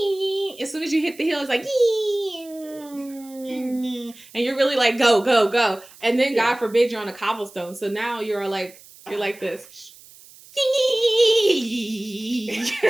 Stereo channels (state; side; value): noise; right; hiss, 22 dB below the sound